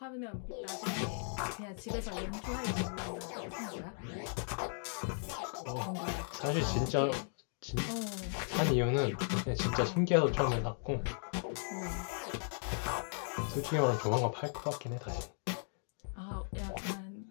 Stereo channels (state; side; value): silent; right; 53 dB below the other